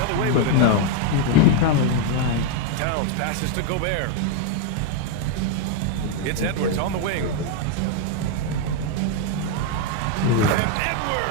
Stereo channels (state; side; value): different; both; correlation 0.01